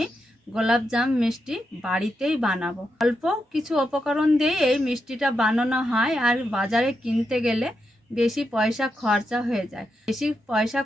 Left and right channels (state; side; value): normal; both; correlation 0.85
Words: গোলাপজাম মিষ্টি বাড়িতেই বানাবো। অল্প কিছু উপকরণ দিয়ে এই মিষ্টিটা বানানো হয়, আর বাজারে কিনতে গেলে বেশি পয়সা খরচা হয়ে যায়। বেশি পয়সা